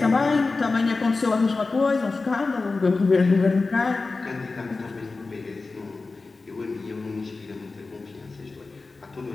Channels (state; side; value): quieter; right; 3.8 dB